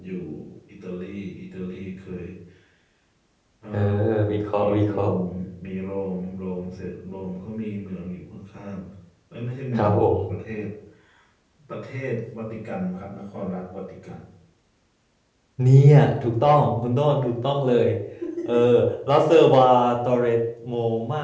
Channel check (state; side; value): identical; both; correlation 1.00